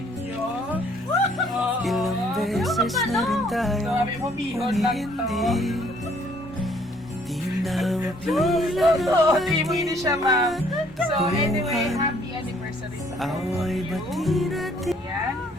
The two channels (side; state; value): both; normal; correlation 0.63